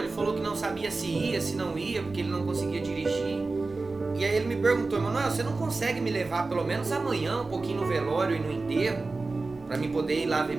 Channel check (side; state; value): left; quieter; 3.6 dB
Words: falou que não sabia se ia, se não ia, porque ele não conseguia dirigir. E aí ele me perguntou: Emanuel, você não consegue me levar pelo menos amanhã um pouquinho no velório e no enterro, pra mim poder ir lá ver